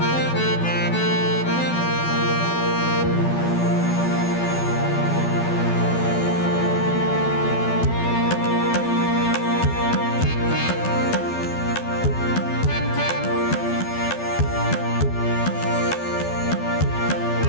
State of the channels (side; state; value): right; late; 12 ms